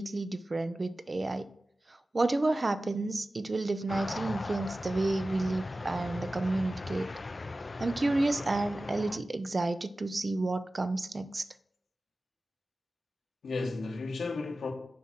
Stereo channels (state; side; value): normal; both; correlation 0.95